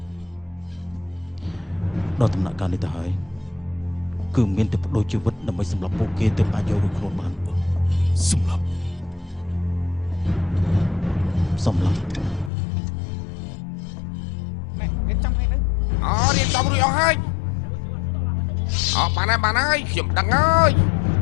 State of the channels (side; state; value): right; drops out; at 12.5 s